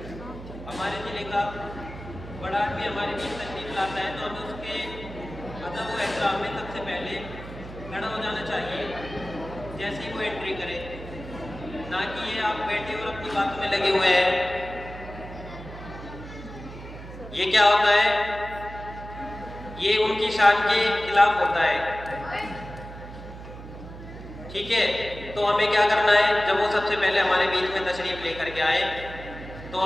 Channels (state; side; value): noise; right; hum, 13 dB below the sound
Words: हमारे ज़िले का बड़ा आदमी हमारे बीच तशरीफ लाता है तो हमें उसके अदब व एहतराम में सबसे पहले खड़ा हो जाना चाहिए जैसे ही वो एंट्री करे, ना कि ये आप बैठे और अपनी बातों में लगे हुए हैं। ये क्या होता है, ये उनकी शान के खिलाफ होता है, ठीक है। तो हमें क्या करना है, जब वो सबसे पहले हमारे बीच में तशरीफ लेकर के आए तो